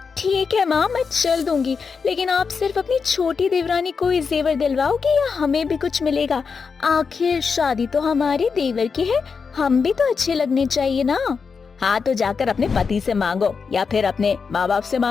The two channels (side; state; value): right; quieter; 5.4 dB